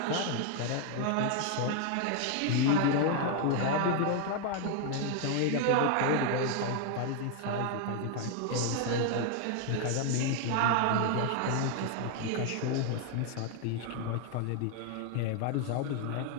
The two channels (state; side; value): different; both; correlation 0.00